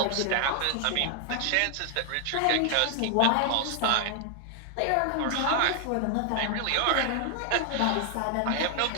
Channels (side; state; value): both; different; correlation 0.00